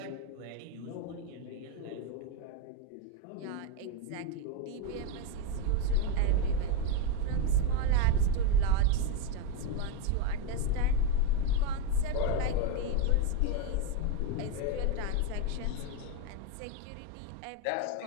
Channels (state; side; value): different; both; correlation 0.03